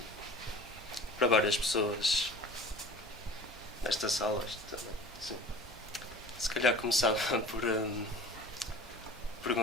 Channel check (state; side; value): normal; both; correlation 0.43